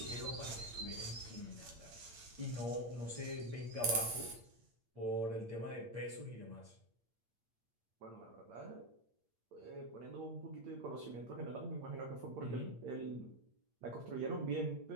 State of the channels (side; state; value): left; late; 8.7 ms